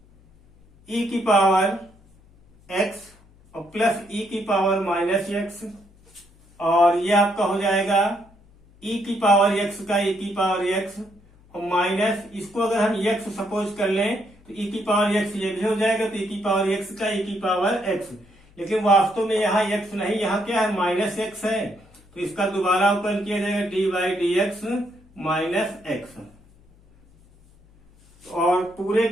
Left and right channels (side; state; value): left; noise; hum, 28 dB below the sound